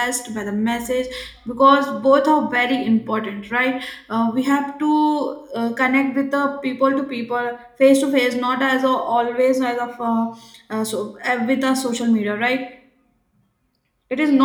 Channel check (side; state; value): both; identical; correlation 1.00